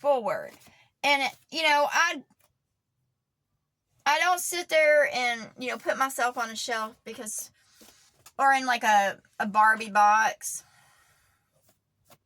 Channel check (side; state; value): both; identical; correlation 1.00